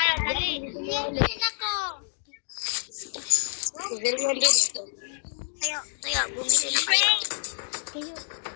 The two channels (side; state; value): right; silent; digital silence